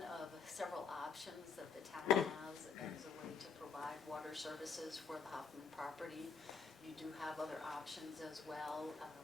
of several options that the town has as a way to provide water services for the Hoffman property. You do have other options as well,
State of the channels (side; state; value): right; quieter; 5.7 dB